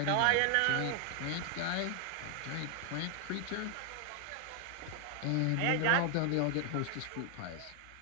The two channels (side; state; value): both; different; correlation 0.00